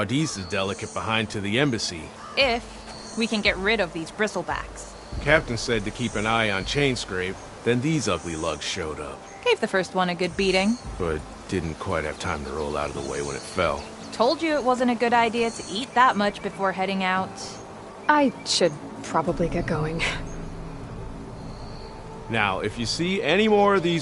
delicate behind to the embassy. If we can get rid of these bristlebacks. Captain said to keep an eye on Chainscrape, then these ugly lugs showed up. Gave the first one a good beating. But didn't quite have time to roll out of the way when it fell. Told you it wasn't a good idea to eat that much before heading out. I should probably get going. Now, if you see any more of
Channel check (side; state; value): both; identical; correlation 1.00